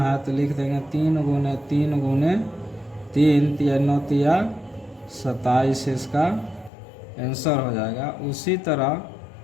तो लिख देंगे 3 गुने 3 गुने 3, तिया 9 तिया 27, इसका आंसर हो जाएगा। उसी तरह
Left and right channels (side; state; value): right; drops out; at 6.7 s